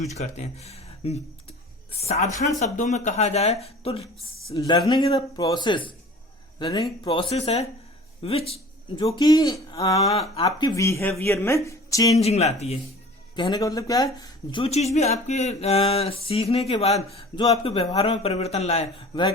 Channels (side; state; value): both; normal; correlation 0.44